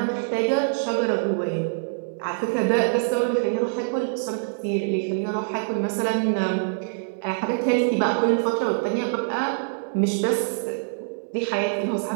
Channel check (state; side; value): silent; left; digital silence